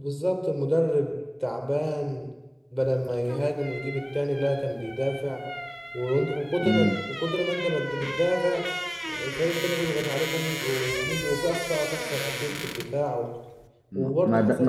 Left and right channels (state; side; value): identical; both; correlation 1.00